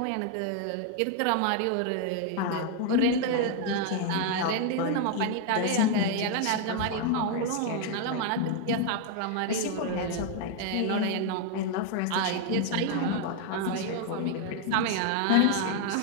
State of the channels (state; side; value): different; both; correlation 0.00